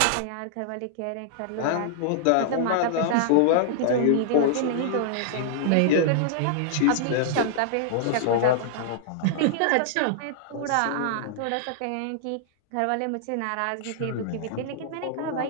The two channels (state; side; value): different; both; correlation -0.01